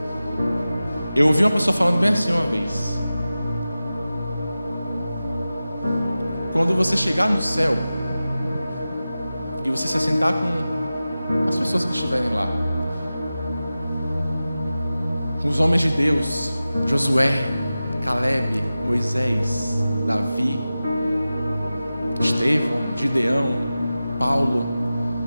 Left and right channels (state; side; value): inverted; both; correlation -0.95